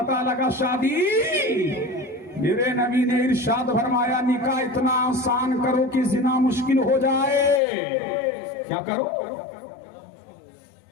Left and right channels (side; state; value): right; drops out; at 7.6 s